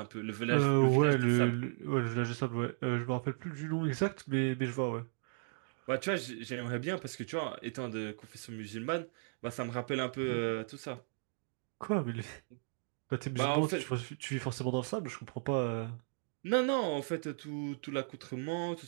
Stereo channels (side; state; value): left; silent; digital silence